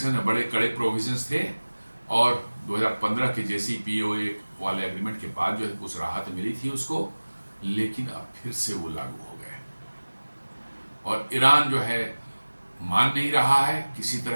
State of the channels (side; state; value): both; inverted; correlation -1.00